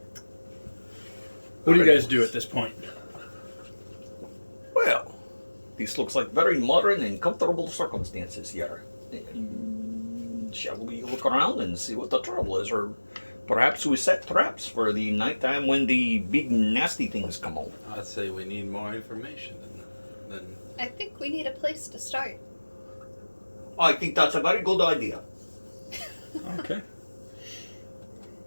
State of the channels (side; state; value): both; inverted; correlation -1.00